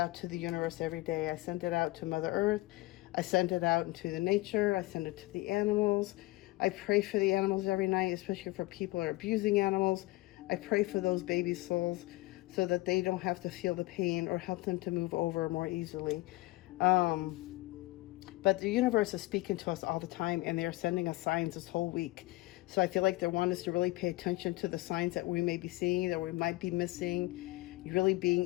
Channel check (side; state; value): right; quieter; 20.2 dB